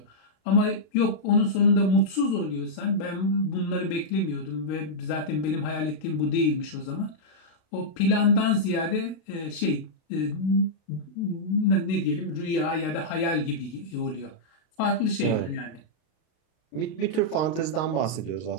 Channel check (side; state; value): right; late; 32 ms